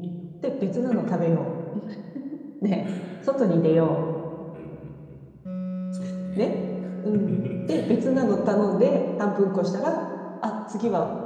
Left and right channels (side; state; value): both; identical; correlation 1.00